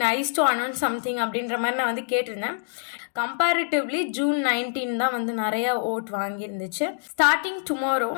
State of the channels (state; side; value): silent; right; digital silence